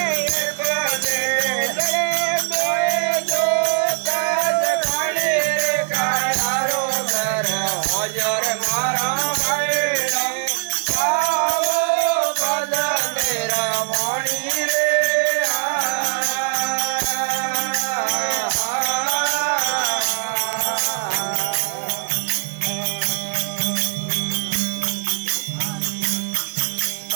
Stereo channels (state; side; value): silent; left; 65 dB below the other